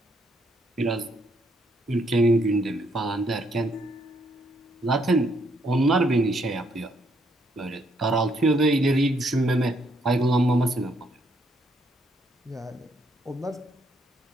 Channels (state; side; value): normal; both; correlation 0.72